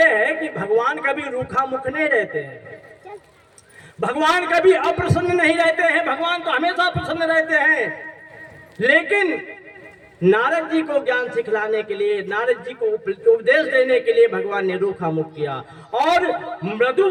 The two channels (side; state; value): both; identical; correlation 1.00